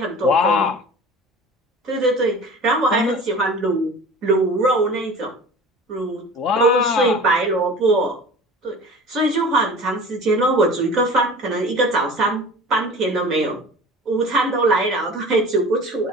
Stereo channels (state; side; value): normal; both; correlation 0.39